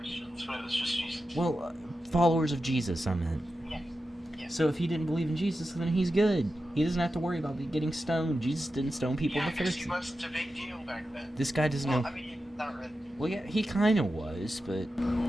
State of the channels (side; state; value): both; normal; correlation 0.91